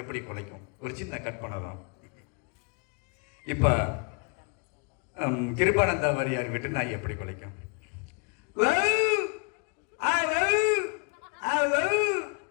எப்படி குலைக்கும்? ஒரு சின்ன கட் பண்ணலாம். இப்ப கிருபானந்த வாரியார் வீட்டு நாய் எப்படி குலைக்கும்?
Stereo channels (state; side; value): quieter; right; 35.4 dB